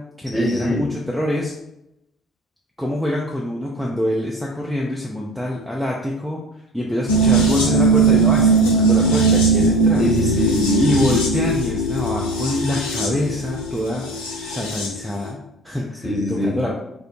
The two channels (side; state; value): both; normal; correlation 0.35